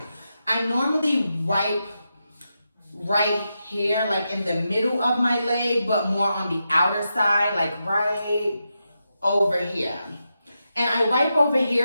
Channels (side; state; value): both; inverted; correlation -0.87